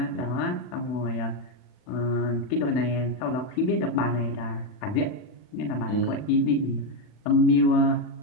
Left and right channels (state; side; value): late; right; 40 ms